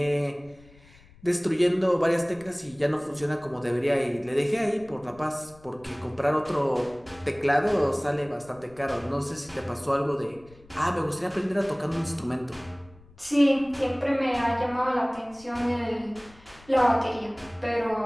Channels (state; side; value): noise; left; rumble, 25 dB below the sound